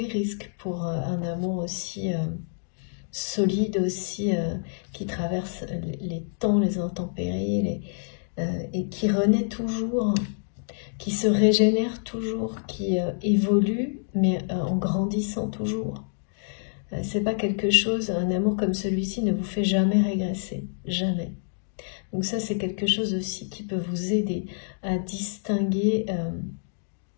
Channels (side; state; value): right; silent; digital silence